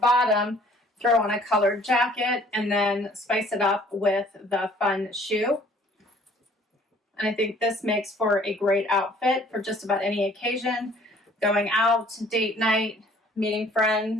throw on a colored jacket and then spice it up with the fun shoe. And I think this makes for a great outfit for just about any occasion. Going out, date night, meeting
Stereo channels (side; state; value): both; normal; correlation 0.56